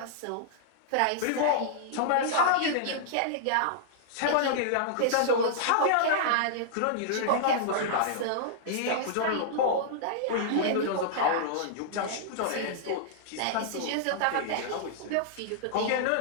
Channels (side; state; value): both; different; correlation -0.01